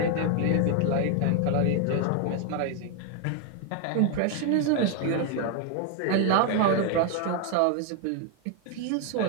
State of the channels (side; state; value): both; different; correlation 0.01